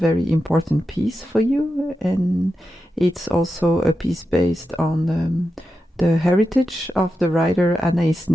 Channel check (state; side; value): normal; both; correlation 0.89